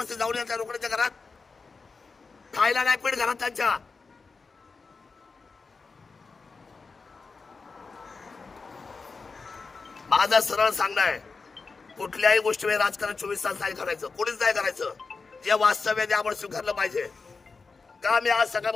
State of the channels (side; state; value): right; quieter; 4.5 dB